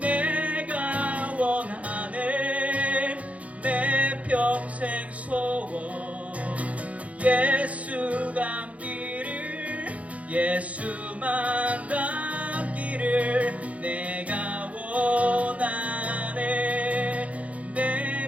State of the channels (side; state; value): left; late; 0.066 ms